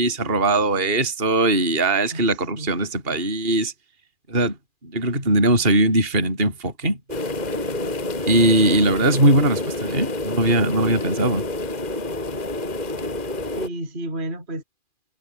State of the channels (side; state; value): left; late; 2.4 ms